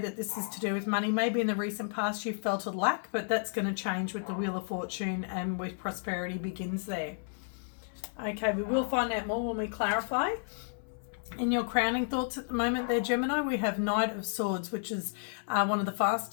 this is to do with money. Maybe in the recent past you felt a lack, but that's going to change with the Wheel of Fortune and with Prosperity Begins there. Okay, we will find out more when we clarify. In your crowning thoughts at the moment there, Gemini, we have Knight of Swords, which is one of the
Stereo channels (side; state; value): right; silent; 56 dB below the other